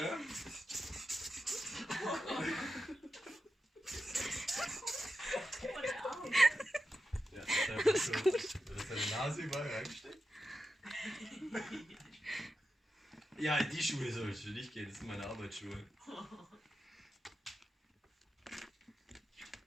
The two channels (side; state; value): both; normal; correlation 0.90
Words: Ja, das ist gut. Dass deine Nase überall reinsteckt. Ja, in die Schuhe soll ich nicht gehen, das sind meine Arbeitsschuhe.